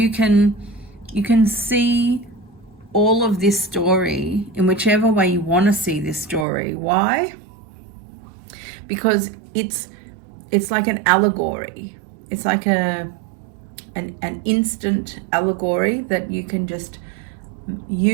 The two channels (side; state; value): left; drops out; at 6.5 s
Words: can see all of this story in whichever way you want to see this story. Why? Because it's like an allegory. It's like an instant allegory that you can just